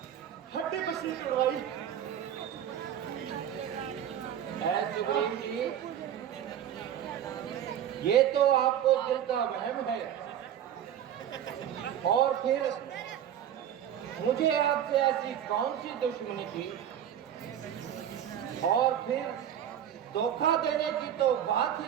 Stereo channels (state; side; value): quieter; left; 10.0 dB